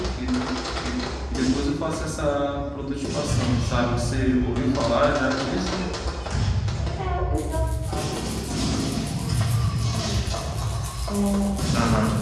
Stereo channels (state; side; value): identical; both; correlation 1.00